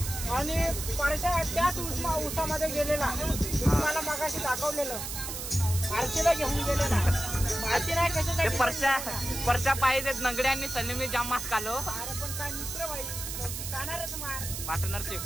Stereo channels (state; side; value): noise; right; hiss, 6 dB below the sound